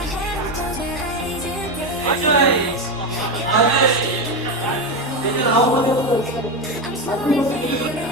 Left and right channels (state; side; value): normal; both; correlation 0.14